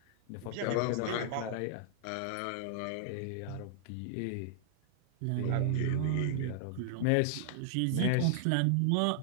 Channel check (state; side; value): different; both; correlation -0.01